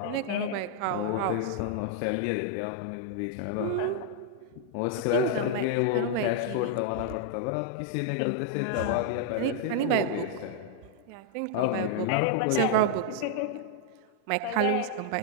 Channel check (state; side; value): different; both; correlation -0.01